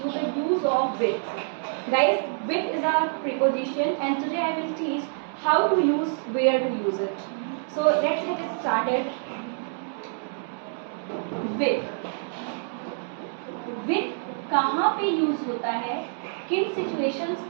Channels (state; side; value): silent; left; 60 dB below the other